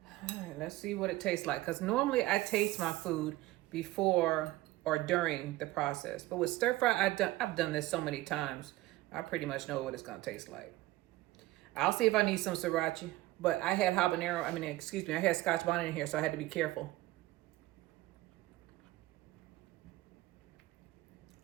All right, let's see what it tastes like. Because normally I taste my food before or during the process. But with stir fry, I've done this so many times. I pretty much know what it's gonna taste like. I'll see if I need some sriracha. But I had habanero, I had Scotch bonnet in here, so I had to be careful.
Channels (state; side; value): quieter; left; 17.8 dB